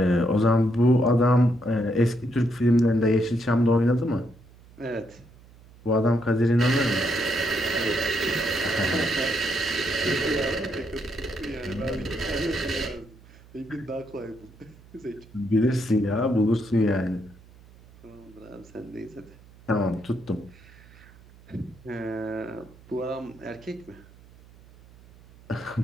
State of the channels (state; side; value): noise; right; hum, 24 dB below the sound